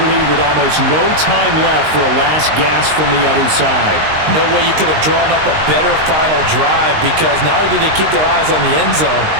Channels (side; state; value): left; late; 19 ms